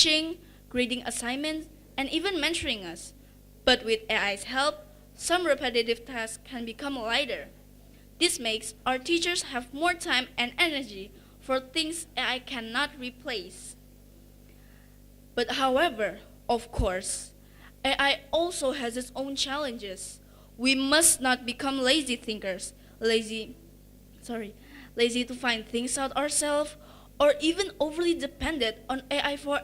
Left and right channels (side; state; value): both; identical; correlation 1.00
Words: grading assignments, and even mentoring us. But with AI's help, some repetitive tasks can become lighter. This makes our teachers have more time and energy for things AI cannot replace. But however, of course, AI also has its own challenges. We must not become lazy thinkers, lazy to find things out ourselves, or even overly dependent on AI for